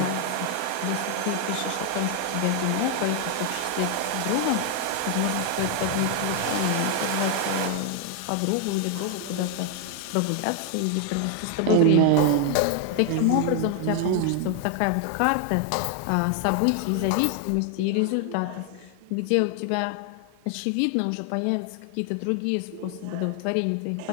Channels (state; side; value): different; both; correlation 0.00